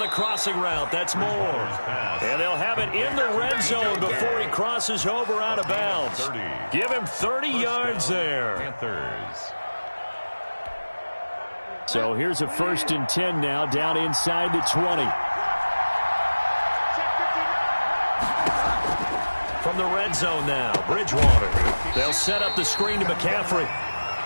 crossing route. That's more. And they'll have it in the red zone before he crosses over out of bounds. Give him 30 yards there. Panthers. So here's a 1st and 10 now, down inside the 20. From the red zone now, Bridgewater. They'll set up the screen to McCaffrey.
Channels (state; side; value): inverted; both; correlation -1.00